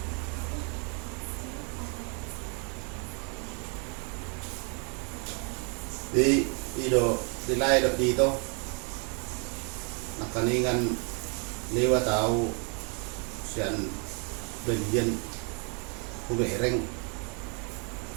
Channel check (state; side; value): quieter; left; 37.8 dB